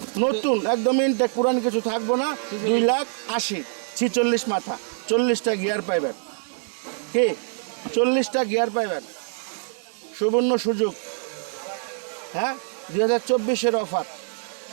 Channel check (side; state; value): left; silent; 62 dB below the other